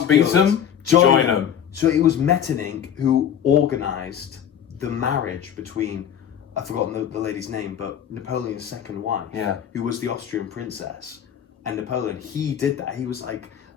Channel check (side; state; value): right; quieter; 9.1 dB